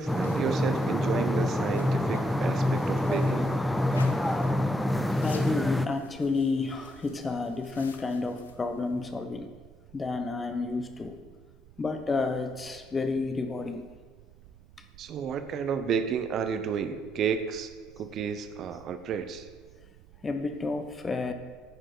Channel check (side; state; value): right; noise; rumble, 23 dB below the sound